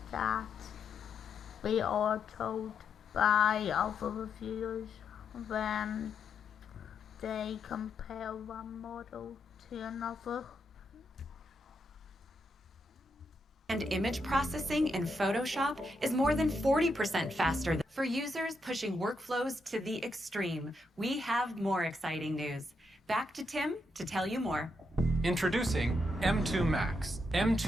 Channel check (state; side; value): normal; both; correlation 0.81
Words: that we are told by other reviewers when they compare one model to another. And image processing in Photoshop is more than 40% faster. For users pushing workflows to the extreme, we have more exciting news. Back to Tim to tell you more. Introducing M2 Max.